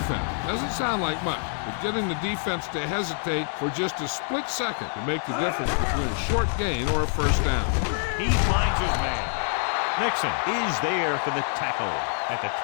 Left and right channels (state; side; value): silent; right; 61 dB below the other